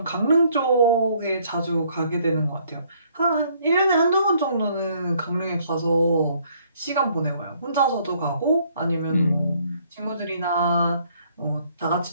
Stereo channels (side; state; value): both; inverted; correlation -0.65